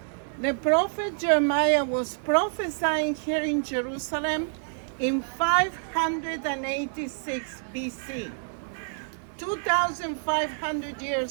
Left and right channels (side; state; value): left; silent; digital silence